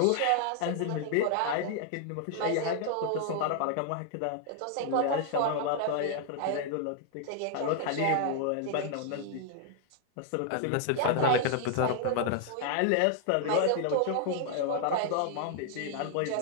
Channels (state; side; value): different; both; correlation 0.00